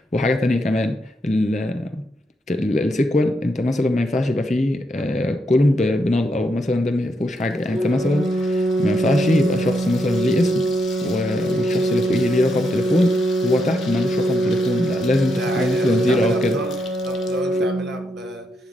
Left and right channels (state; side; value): normal; both; correlation 0.80